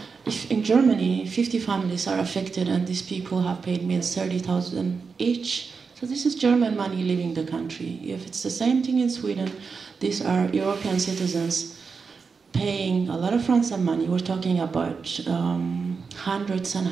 if in Germany 50 families are affected and these people have paid me $30,000 each, so this is German money leaving the country. If it's the same thing in Sweden, these are European citizens paying a lot of ransom money. We're talking about hundreds and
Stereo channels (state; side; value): quieter; left; 5.2 dB